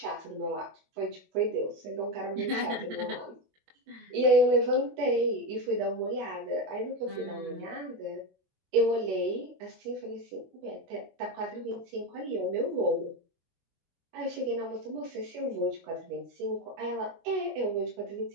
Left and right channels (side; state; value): left; late; 22 ms